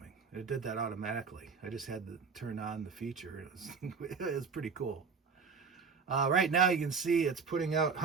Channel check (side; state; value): left; quieter; 5.3 dB